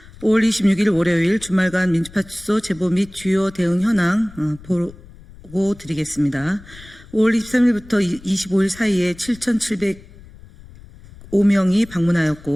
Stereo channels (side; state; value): left; noise; rumble, 21 dB below the sound